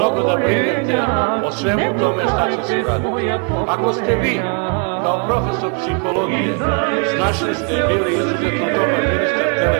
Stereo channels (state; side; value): quieter; left; 36.5 dB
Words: da brinete o svemu tome šta će se raditi. Ako ste vi, kao profesor psihologije, snašli ste bili izuzetno dobar ministar